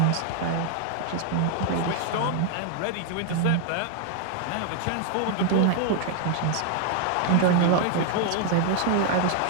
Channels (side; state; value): both; different; correlation 0.00